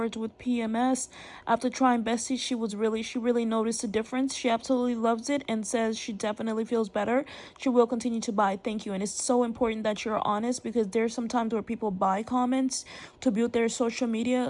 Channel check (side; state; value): both; identical; correlation 1.00